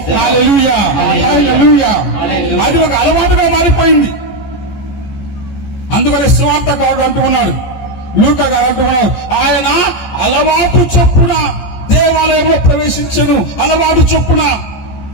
hallelujah, hallelujah. అది ఒక అలవాటుగా మారిపోయింది. అందుకనే సువార్తకారుడు అంటూ ఉన్నాడు, లూకా గారు అంటూ ఉన్నాడు, ఆయన అలవాటు చొప్పున దేవాలయంలో ప్రవేశించను. అలవాటు చొప్పున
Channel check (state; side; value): late; right; 14 ms